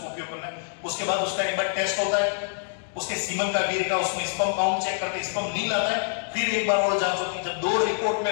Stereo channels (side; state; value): right; silent; digital silence